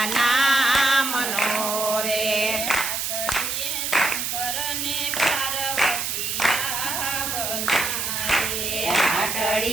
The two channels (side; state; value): right; noise; hiss, 2 dB below the sound